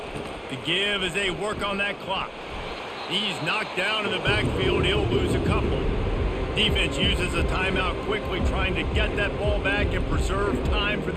The give as they work on that clock. He's knocked down in the backfield. He'll lose a couple. Defense uses a timeout quickly, trying to get that ball back and preserve time for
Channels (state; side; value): identical; both; correlation 1.00